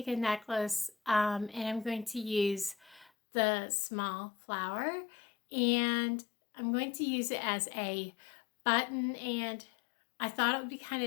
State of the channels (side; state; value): right; drops out; at 3.1 s